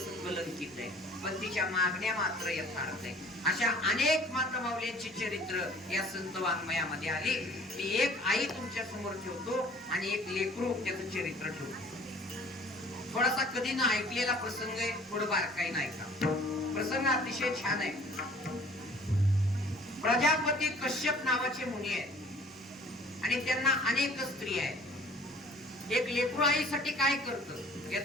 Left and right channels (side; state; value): both; normal; correlation 0.51